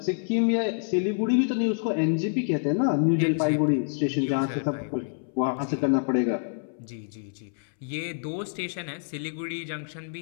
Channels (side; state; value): right; silent; 60 dB below the other